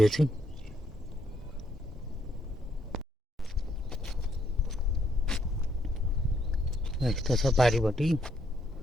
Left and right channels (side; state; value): both; normal; correlation 0.73